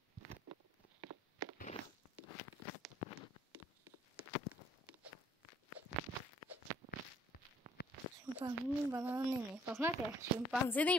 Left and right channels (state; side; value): normal; both; correlation 0.62